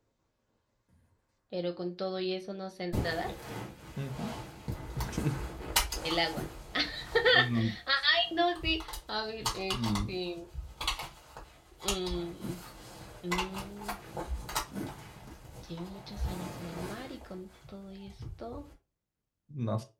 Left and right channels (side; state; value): both; identical; correlation 1.00